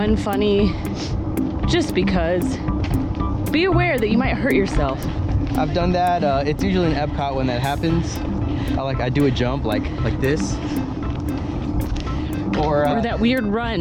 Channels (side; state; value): both; identical; correlation 1.00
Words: funny just because. Be aware that you might hurt yourself. I've done that. It's usually in Epcot when that happens. I do a jump like this. Or that weird